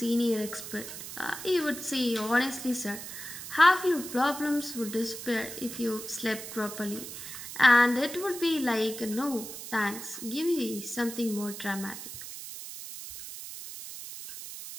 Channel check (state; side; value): noise; right; hiss, 10 dB below the sound